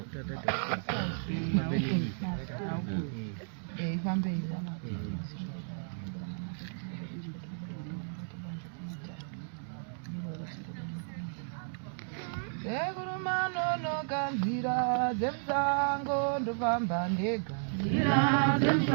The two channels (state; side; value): silent; left; digital silence